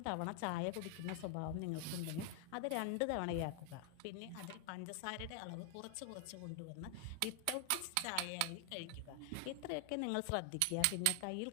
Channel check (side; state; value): both; different; correlation 0.00